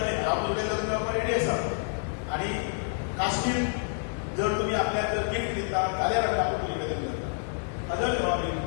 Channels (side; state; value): right; silent; digital silence